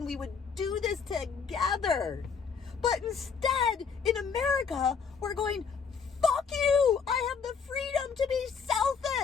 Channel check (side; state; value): right; quieter; 6.0 dB